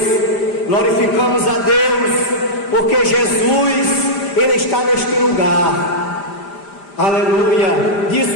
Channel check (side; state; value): right; late; 5.0 ms